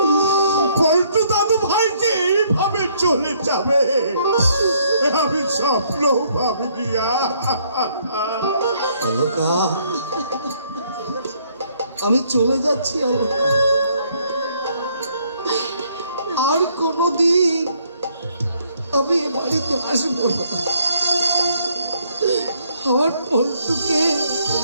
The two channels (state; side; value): inverted; both; correlation -0.67